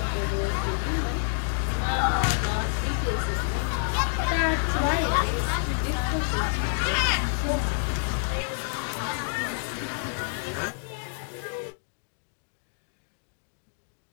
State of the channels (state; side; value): silent; right; digital silence